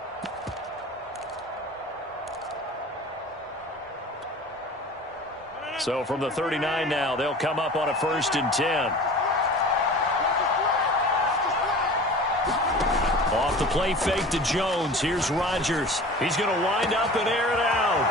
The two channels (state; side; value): normal; both; correlation 0.40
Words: So from the 39 now, they'll come up on a 1st and 10. Off the play fake to Jones. Here's Rodgers. He's going to wind up and air it out.